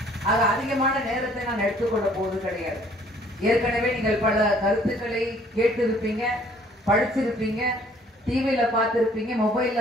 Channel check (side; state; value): both; normal; correlation 0.59